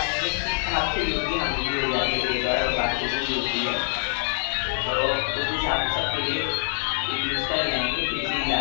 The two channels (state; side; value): silent; right; digital silence